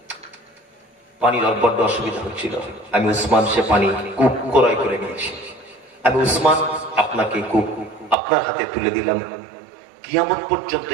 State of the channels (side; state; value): left; drops out; at 8.2 s